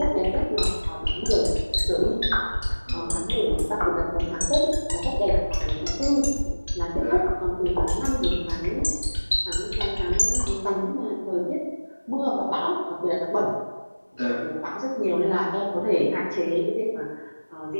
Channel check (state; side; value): inverted; both; correlation -1.00